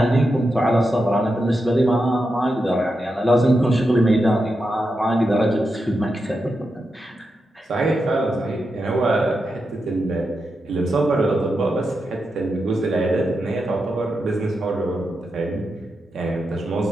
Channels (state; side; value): normal; both; correlation 0.87